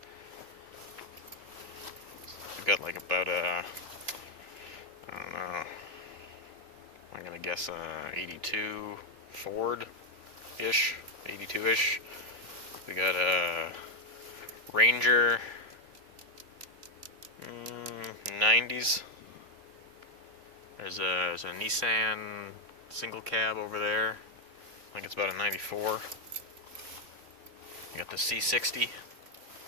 We've got like about I don't know, I'm gonna guess 82 Ford-ish, 82-ish. We got a Ranger 90s. There's a Nissan single cab over there. I think it's about a 94. We got the C60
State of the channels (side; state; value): left; late; 3.2 ms